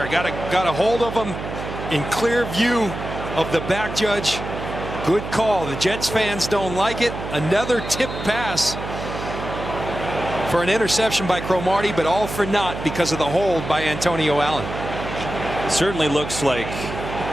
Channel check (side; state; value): right; noise; hum, 8 dB below the sound